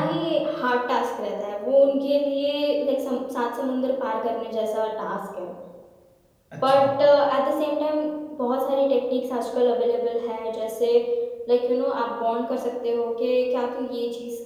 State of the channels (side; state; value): both; identical; correlation 1.00